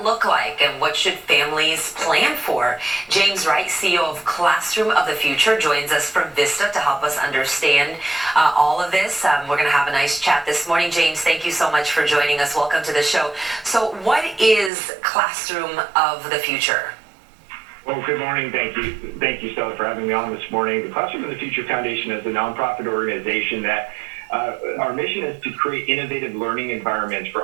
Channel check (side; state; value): left; drops out; at 14.7 s